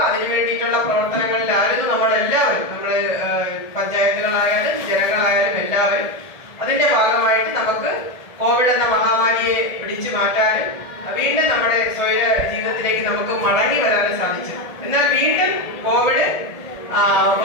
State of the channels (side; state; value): right; late; 1.7 ms